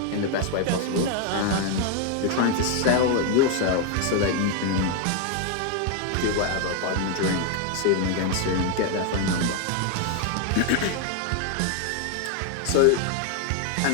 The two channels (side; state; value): both; different; correlation 0.01